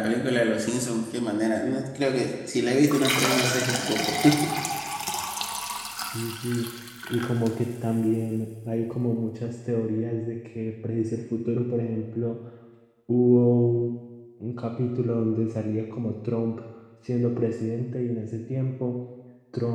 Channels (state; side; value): identical; both; correlation 1.00